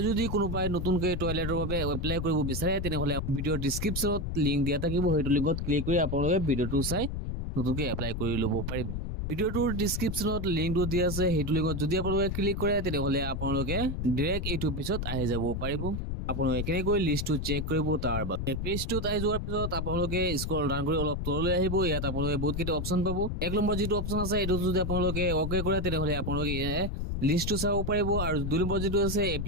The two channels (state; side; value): noise; left; rumble, 3 dB below the sound